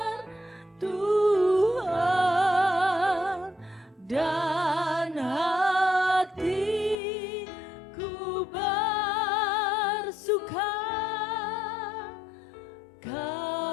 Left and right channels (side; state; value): right; drops out; at 7.0 s